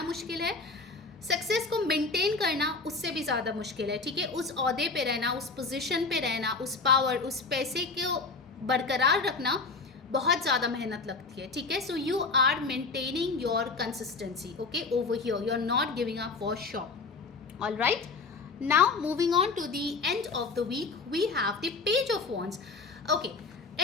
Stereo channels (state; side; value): quieter; right; 4.1 dB